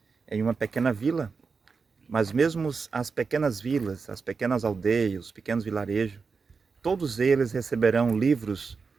em uma pequena vila, mas mesmo as pequenas vilas, as pequenas aldeias, os pequenos vilarejos, todos eles receberão livros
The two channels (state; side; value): quieter; left; 5.0 dB